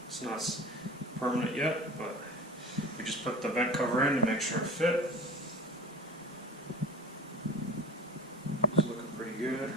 It's not permanent yet, but we just put the vent cover in to make sure it fit. It's looking pretty good.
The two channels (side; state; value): both; normal; correlation 0.36